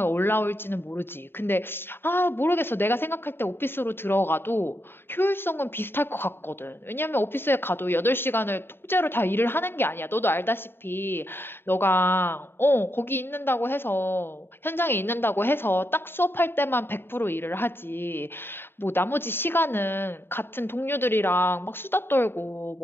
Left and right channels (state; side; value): late; right; 0.11 ms